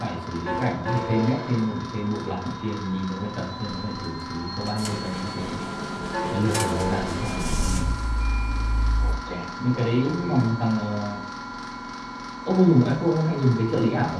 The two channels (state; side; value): identical; both; correlation 1.00